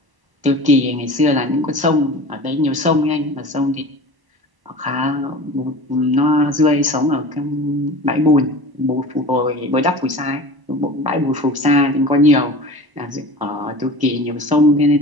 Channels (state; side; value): late; left; 1.0 ms